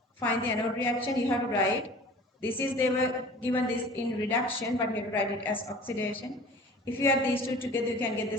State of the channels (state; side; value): normal; both; correlation 0.44